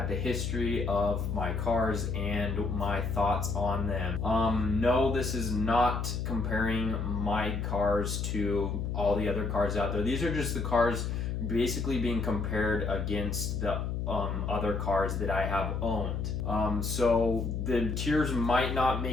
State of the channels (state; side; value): noise; left; hum, 2 dB below the sound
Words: the history of my cars and my thoughts on them. No, this is not comparing my cars to all the other cars out there. These are just the cars basically being compared against the other cars that I have owned. So the tiers might not